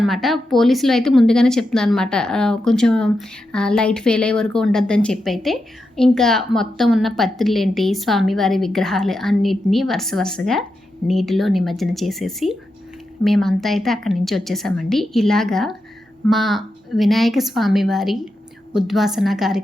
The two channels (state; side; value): normal; both; correlation 0.87